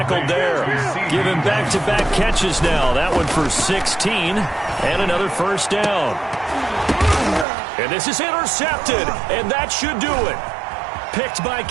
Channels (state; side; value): drops out; left; at 7.5 s